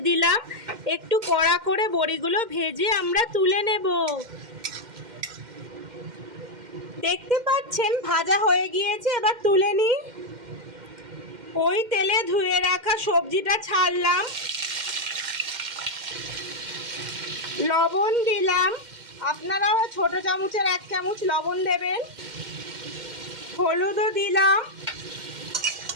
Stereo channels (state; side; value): late; left; 2.1 ms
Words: দিলাম। একটু কড়া করে বড়িগুলো ভেজে আমরা তুলে নেব। দেখতে পাচ্ছেন ভাজা হয়ে গিয়েছে, এবার তুলে নিই। ওই তেলে ধুয়ে রাখা সবজিটা ছাড়লাম, লবণ দিলাম। আপনারা ছোট চামচের 1 চামচ লবণ দেবেন। হলুদও দিলাম।